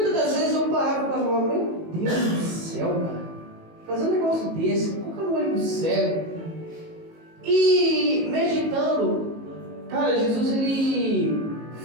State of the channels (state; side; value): late; left; 19 ms